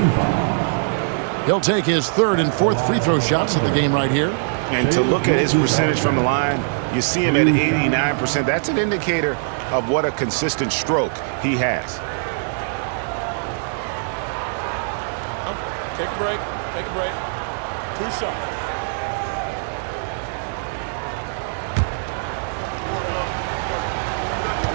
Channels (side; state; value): left; silent; 64 dB below the other